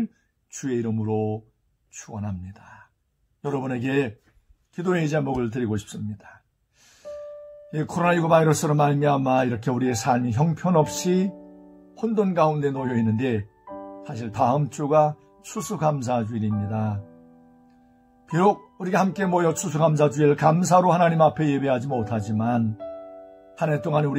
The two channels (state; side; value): identical; both; correlation 1.00